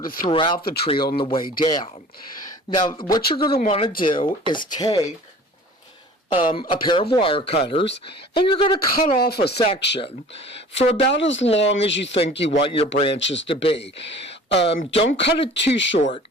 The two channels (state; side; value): normal; both; correlation 0.45